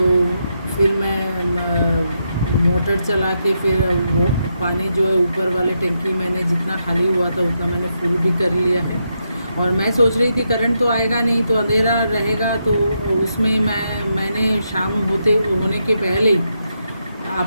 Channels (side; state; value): both; inverted; correlation -0.82